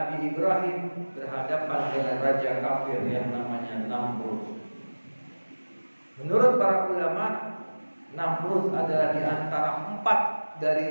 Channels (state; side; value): inverted; both; correlation -1.00